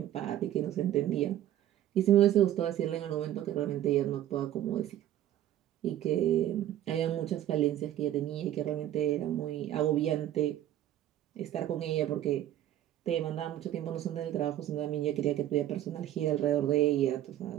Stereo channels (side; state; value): left; quieter; 12.4 dB